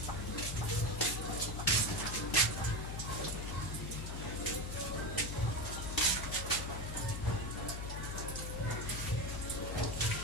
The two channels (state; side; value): noise; left; hum, 4 dB below the sound